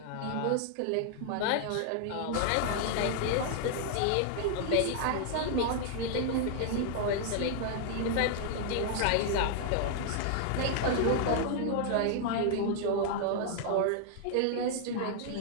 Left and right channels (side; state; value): both; different; correlation 0.00